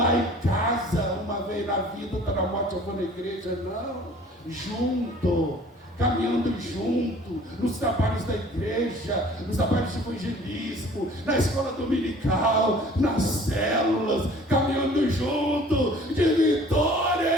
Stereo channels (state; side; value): normal; both; correlation 0.50